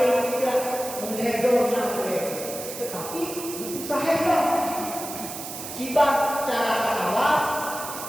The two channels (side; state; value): right; noise; hiss, 9 dB below the sound